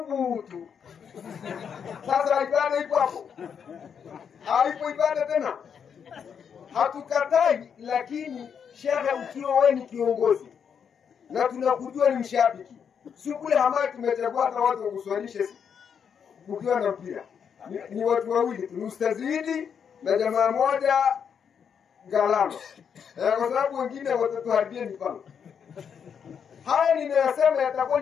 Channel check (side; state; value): right; quieter; 7.3 dB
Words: Sasa ibada ipo hapo, haipo ibada tena. Hatukatai, lakini shekhe, ukiwa wewe ni kiongozi na tunakujua ni mshabiki, si kule hamaya tumechagua hata watu wakuswalishe ukiwa na mpira. Ni watu wawili tu, Ustazidi na jamaa moja Galama. Kwa sababu wengine watatuharibia mipango. Haya ninayosema yatakuwa